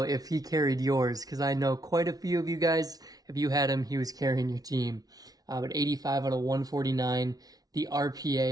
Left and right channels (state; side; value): late; left; 0.18 ms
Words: if he carried yours, because I know quite a few of you guys, if you had him, he was carrying your team. But 85 out of 149, the